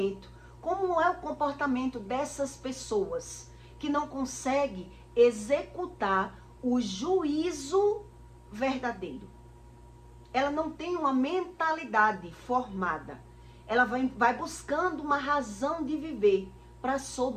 Como é o comportamento dessas pessoas que não conseguem executar o juízo verdadeiro? Ela não tem uma mentalidade formada. Ela vai buscando uma razão de viver para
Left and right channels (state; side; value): identical; both; correlation 1.00